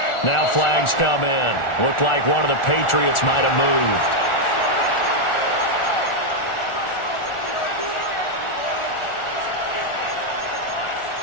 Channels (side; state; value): right; late; 1.4 ms